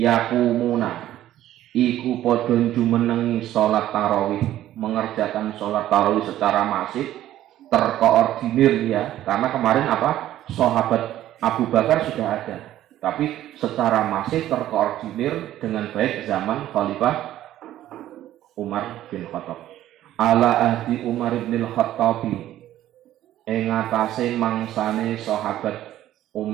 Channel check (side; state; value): left; quieter; 13.1 dB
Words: iku padha jumenengi salat tarawih, mengerjakan sholat tarawih secara masif, terkoordinir ya. Karena kemarin apa? Sahabat Abu Bakar sudah ada, tapi secara masif terkoordinir dengan baik zaman Khalifah Umar bin Khattab. ala ahdi Umar bin Khattab ing atase mangsane sahabat